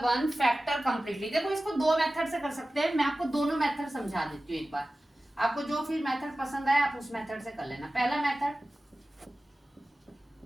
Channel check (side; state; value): both; normal; correlation 0.96